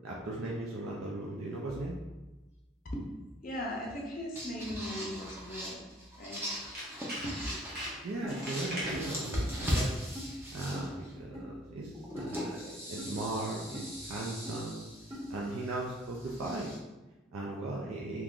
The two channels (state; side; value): normal; both; correlation 0.57